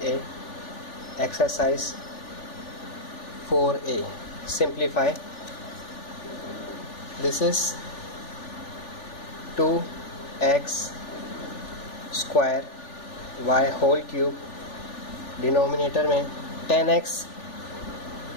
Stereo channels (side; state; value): right; late; 3.4 ms